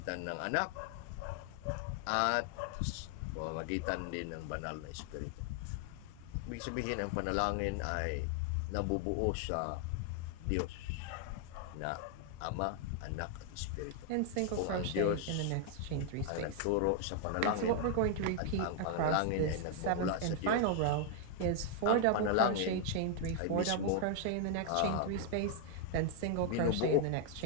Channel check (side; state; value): both; different; correlation 0.00